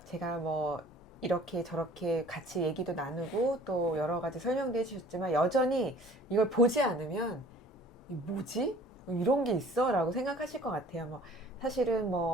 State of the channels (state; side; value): normal; both; correlation 0.50